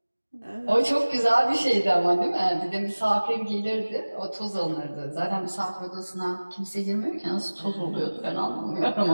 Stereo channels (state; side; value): inverted; both; correlation -1.00